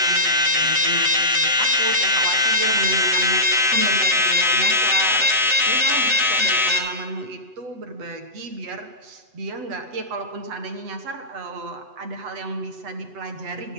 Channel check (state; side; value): late; left; 7.9 ms